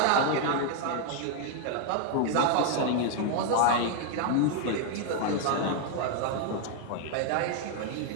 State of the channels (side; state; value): both; different; correlation 0.00